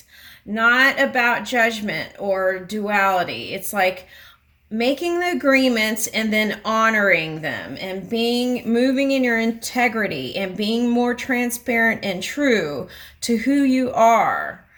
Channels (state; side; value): identical; both; correlation 1.00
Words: not about judgment or duality. It's like making the agreements and then honoring them and moving in your integrity and being more transparent and true to who you are.